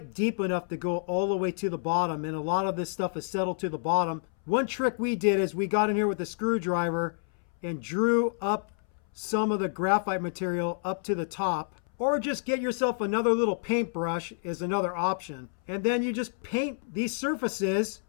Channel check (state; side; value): silent; right; 59 dB below the other